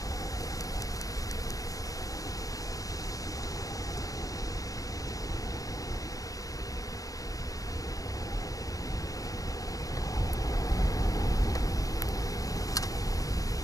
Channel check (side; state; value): right; late; 0.17 ms